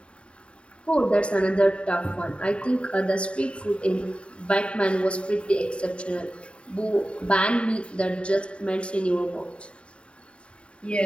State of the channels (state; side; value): late; right; 0.059 ms